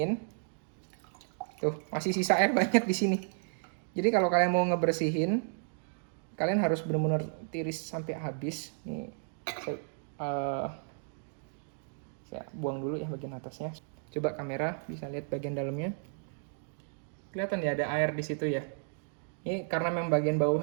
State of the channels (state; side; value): silent; left; digital silence